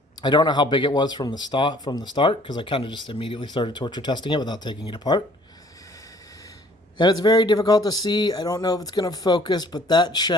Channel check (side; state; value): both; normal; correlation 0.56